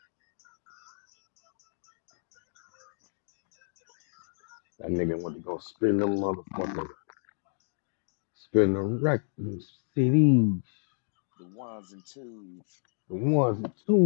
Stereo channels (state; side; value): silent; right; digital silence